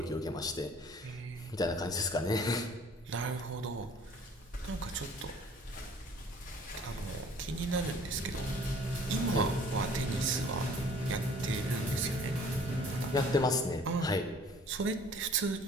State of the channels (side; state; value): both; normal; correlation 0.53